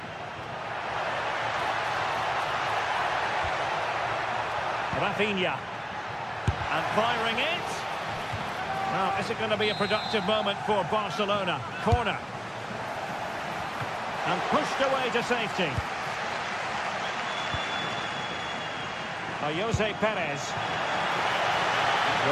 Rafinha. And firing it. Now, is it going to be a productive moment for Barcelona? Corner. And pushed away to safety. Jose Perez.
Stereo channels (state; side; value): identical; both; correlation 1.00